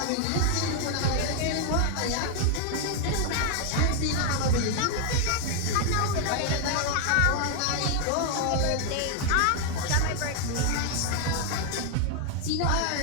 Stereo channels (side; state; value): both; different; correlation 0.00